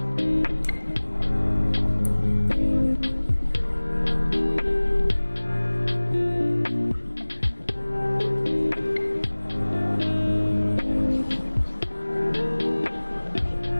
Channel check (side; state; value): both; inverted; correlation -1.00